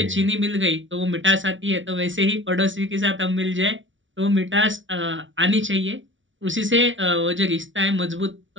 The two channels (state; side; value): late; left; 0.56 ms